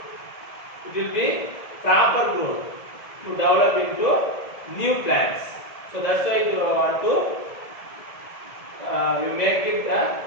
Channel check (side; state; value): right; late; 1.7 ms